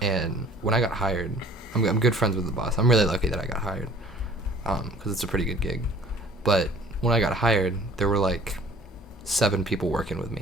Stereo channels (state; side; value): normal; both; correlation 0.51